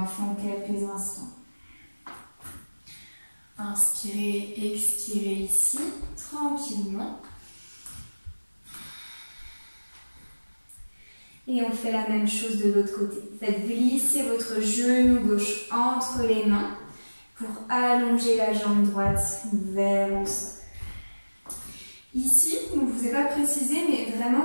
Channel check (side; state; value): both; inverted; correlation -1.00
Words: quelques instants. Inspirez, expirez ici, tranquillement. Et on fait la même chose de l'autre côté. Faites glisser votre genou gauche entre les mains pour allonger la jambe droite vers le sol. Ici, je ne vous ai pas précisé, mais vraiment,